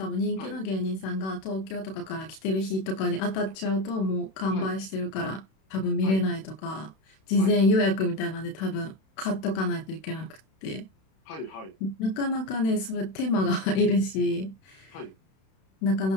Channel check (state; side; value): late; right; 31 ms